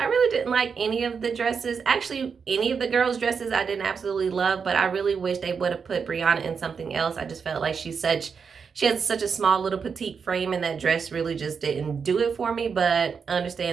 really didn't like any of the dresses. Actually, any of the girls' dresses I didn't absolutely love, but I really wish they would have put Brianna in something else. I just felt like she has such a small little petite frame, and that dress really just didn't do it for me. But I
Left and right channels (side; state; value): left; quieter; 6.0 dB